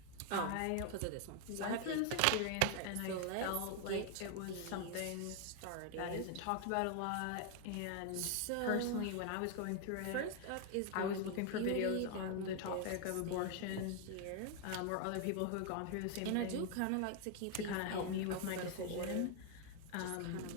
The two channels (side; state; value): both; different; correlation 0.00